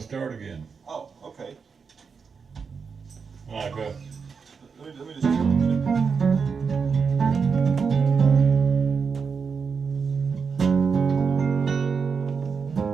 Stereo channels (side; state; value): left; quieter; 5.6 dB